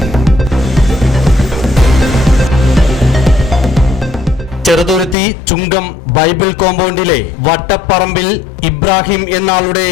ചെറുതുരുത്തി ചുങ്കം ബൈബിൾ കോമ്പൗണ്ടിലെ വട്ടപ്പറമ്പിൽ ഇബ്രാഹിം എന്നാളുടെ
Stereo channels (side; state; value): right; drops out; at 5.2 s